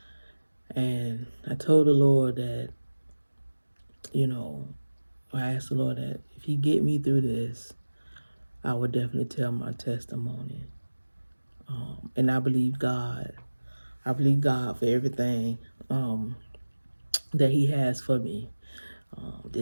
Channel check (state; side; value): inverted; both; correlation -1.00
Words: and I told the Lord that you know I asked the Lord that if He get me through this, I would definitely tell my testimony. And I believe God. I believe God for everything um, that He has for me.